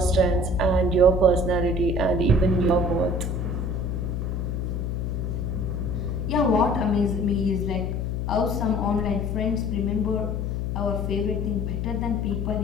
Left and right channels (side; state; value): left; noise; hum, 1 dB below the sound